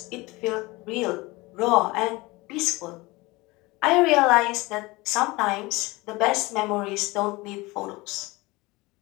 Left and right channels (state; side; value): quieter; right; 22.4 dB